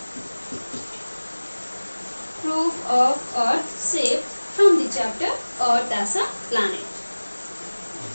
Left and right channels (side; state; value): both; inverted; correlation -1.00